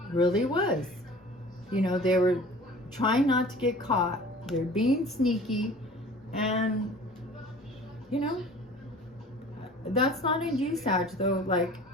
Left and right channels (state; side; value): normal; both; correlation 0.45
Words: really was. You know, they were trying not to get caught. They're being sneaky. And, you know, that's not in you, Sag, though. Like,